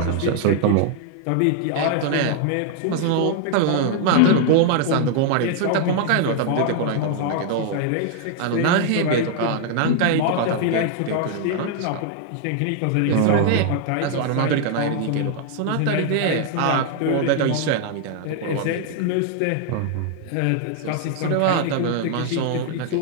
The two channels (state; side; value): different; both; correlation 0.00